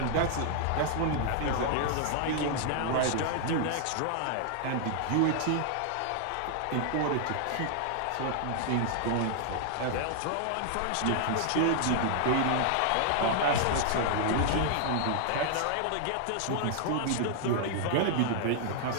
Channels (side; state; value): both; different; correlation -0.01